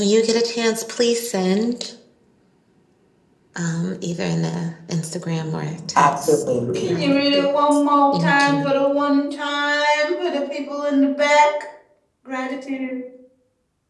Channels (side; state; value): both; identical; correlation 1.00